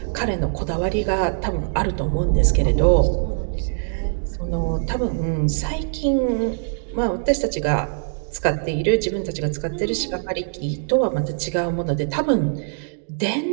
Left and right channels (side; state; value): left; silent; digital silence